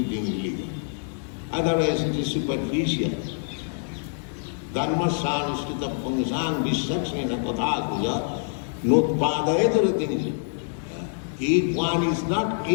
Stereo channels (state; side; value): silent; right; digital silence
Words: religion. Otherwise it is superficial. Dharmasyanushrita Pungsang Vishaksena Kathakuja Nutpadayataratinja. If one is not